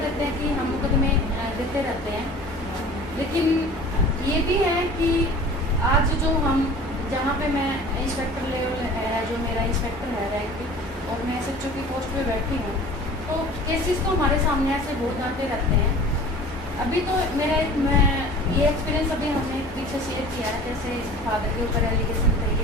हैं कि हम मुकदमे देते रहते हैं, लेकिन ये भी है कि आज जो हम जहाँ पे मैं इंस्पेक्टर लेवल है, जो मेरा इंस्पेक्टर है रैंक, और मैं SHO की पोस्ट पे बैठी हूँ, तो केसेस तो हमारे सामने ऐसे बहुत आते रहते हैं। अभी तो मेरा मैं ये एक्सपीरियंस अभी हमने पीछे शेयर किया है, जैसे फादर के ऊपर एलिगेशन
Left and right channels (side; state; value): both; normal; correlation 0.43